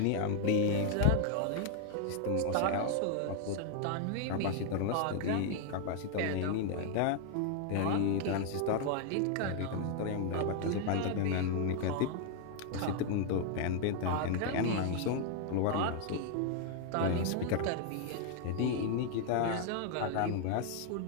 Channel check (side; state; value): both; different; correlation 0.00